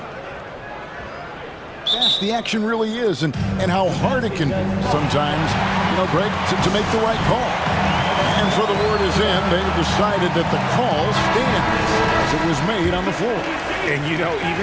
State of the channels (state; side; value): identical; both; correlation 1.00